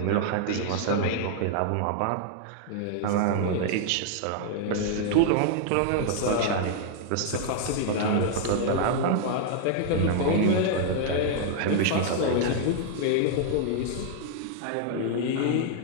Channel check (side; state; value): both; different; correlation 0.00